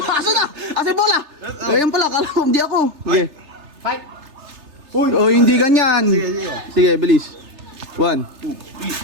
Asa na? Asa yung bola? Ayun pala. Kala ko, hindi ako. Okay. 5. Oh, hindi ganyan. Sige, sige. Sige, bilis. 1, 2,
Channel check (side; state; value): left; late; 3.3 ms